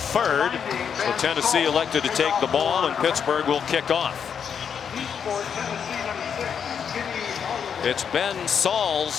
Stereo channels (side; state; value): right; quieter; 7.4 dB